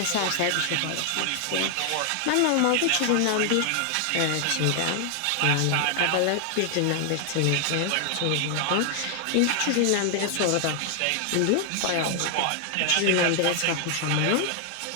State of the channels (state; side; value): different; both; correlation 0.00